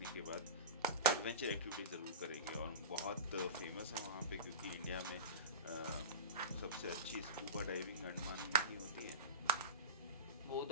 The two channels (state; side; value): inverted; both; correlation -0.31